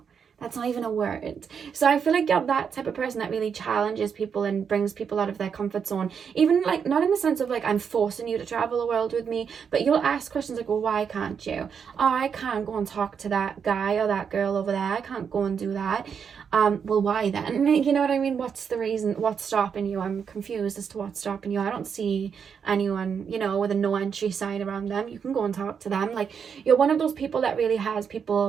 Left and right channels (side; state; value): left; quieter; 6.9 dB